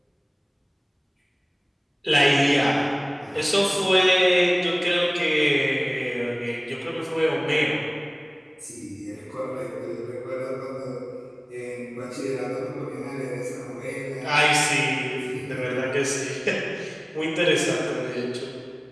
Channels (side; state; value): both; identical; correlation 1.00